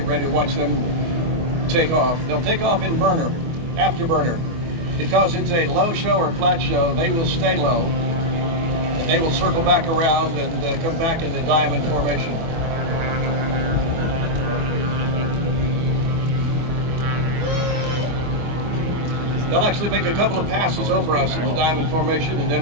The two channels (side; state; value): left; late; 24 ms